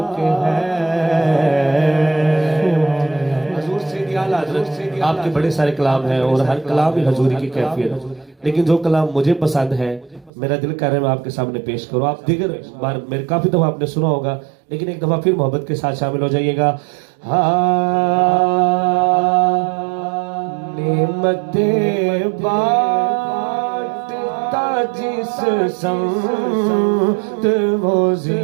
کے ہیں حضور سیدی اعلیٰ حضرت آپ کے بڑے سارے کلام ہیں اور ہر کلام ہی حضوری کی کیفیت ہے لیکن جو کلام مجھے پسند ہے میرا دل کر رہا ہے میں آپ کے سامنے پیش کروں آپ دیگر بار میرے کافی دفعہ آپ نے سنا ہوگا لیکن ایک دفعہ پھر محبت کے ساتھ شامل ہو جائیے گا نعمتیں بانٹتا جس سمت وہ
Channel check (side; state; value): left; drops out; at 10.3 s